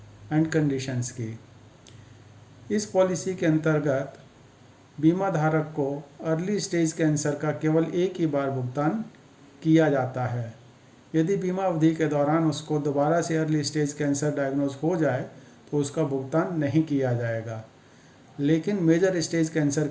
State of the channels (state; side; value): identical; both; correlation 1.00